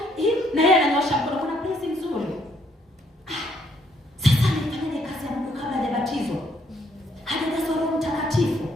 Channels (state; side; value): normal; both; correlation 0.69